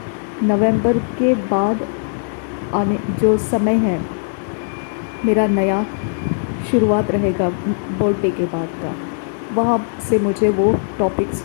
नवंबर के बाद आने जो समय है, मेरा नया शुरुआत रहेगा बर्थडे के बाद का, वहाँ से मुझे वो टॉपिक्स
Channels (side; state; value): right; silent; digital silence